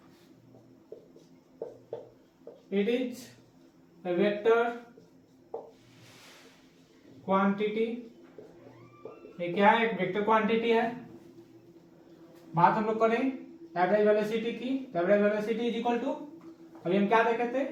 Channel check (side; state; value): both; identical; correlation 1.00